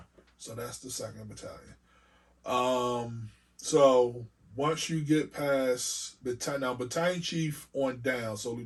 So that's the 2nd battalion. So once you get past battalion chief on down, so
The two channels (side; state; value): both; identical; correlation 1.00